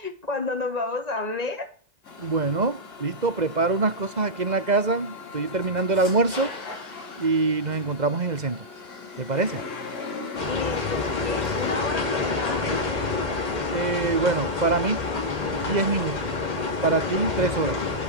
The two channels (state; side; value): late; left; 2.0 ms